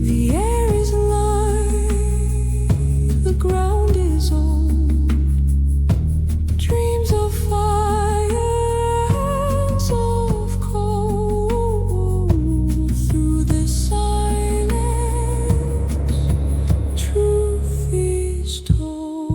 The air is light, the ground is old. Dreams of fire, hands of cold. Through the silence, truth is told.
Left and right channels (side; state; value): both; identical; correlation 1.00